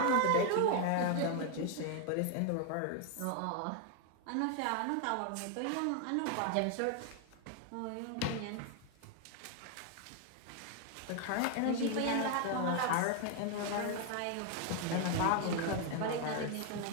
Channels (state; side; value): different; both; correlation 0.01